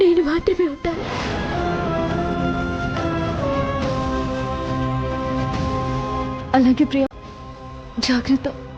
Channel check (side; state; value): both; identical; correlation 1.00